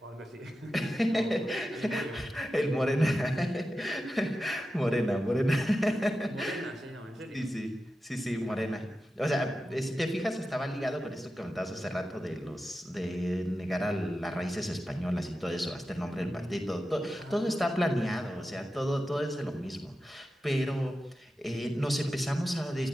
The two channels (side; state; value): both; normal; correlation 0.92